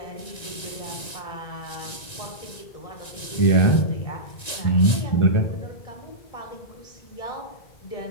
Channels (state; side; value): late; right; 1.9 ms